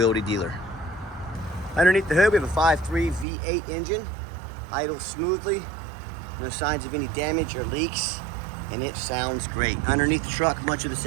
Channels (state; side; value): drops out; left; at 3.2 s